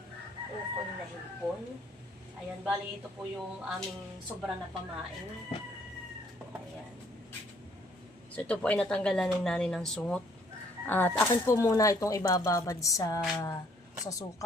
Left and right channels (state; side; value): normal; both; correlation 0.63